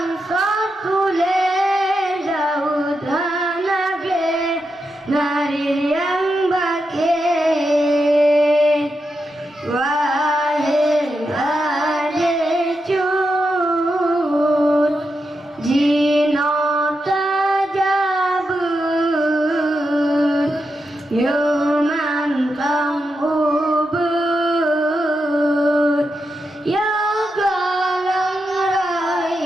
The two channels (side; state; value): both; normal; correlation 0.86